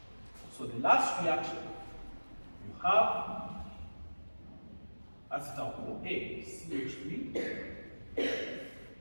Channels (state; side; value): inverted; both; correlation -1.00